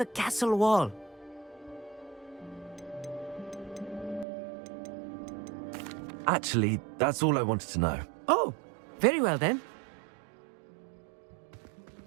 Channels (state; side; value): drops out; left; at 4.2 s